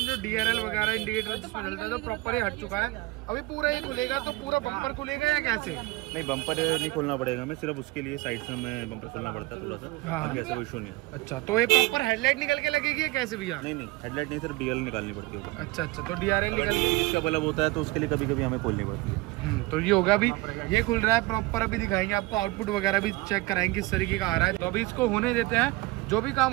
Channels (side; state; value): left; quieter; 21.6 dB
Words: DRL वगैरह इंडिकेटर जिसमें चलता है तो प्रॉपर ये हट चुका है। अभी पूरा ये खुलेगा तो पूरा बम्पर खुलेगा या कैसे? नहीं, बम्पर नहीं खोलना पड़ेगा, मैं सिर्फ उसके लिए साइड से हमें बम्पर खोलना पड़ता है थोड़ा सा। हाँ। ऐसा कोई इशू नहीं है। अच्छा, तो ये प्रॉपर हेडलाइट निकल के लगेगी या कैसे भैया? नहीं, हेडलाइट नहीं, सिर्फ DRL निकालनी पड़ती है। अच्छा, तो DRL निकल के इसका बल्ब होता है तो उसके लिए कभी कभी हमें खोलनी पड़ती है। तो ये होगा, अभी ये खुल रहा है प्रॉपर। अभी दिखाएंगे आपको आउटपुट वगैरह भी चेक कराएंगे किस तरीके का आ रहा है। तो अभी इसको होने देते हैं। जो भी काम